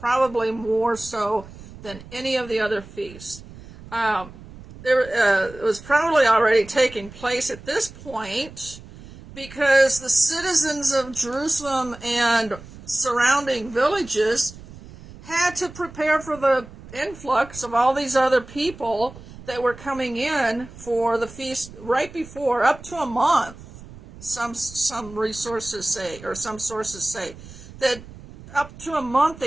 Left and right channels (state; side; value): noise; right; rumble, 17 dB below the sound